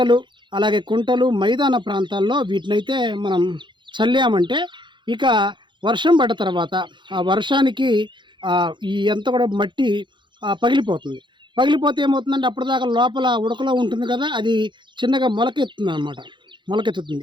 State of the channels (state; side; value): late; left; 0.23 ms